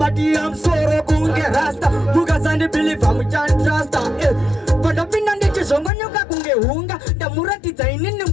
I'm sorry, kunge rasta. Mukasani believer mchani truster. Pandapinda ndichizonga nyoka kunge hunga. Ndamuratidza inini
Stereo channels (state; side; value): drops out; right; at 5.9 s